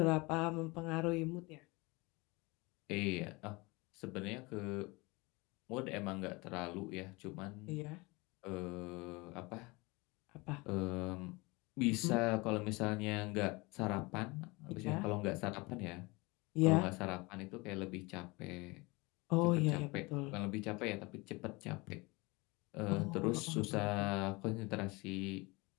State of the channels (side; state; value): right; quieter; 25.1 dB